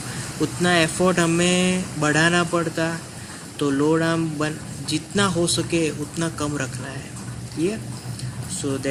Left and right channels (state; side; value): identical; both; correlation 1.00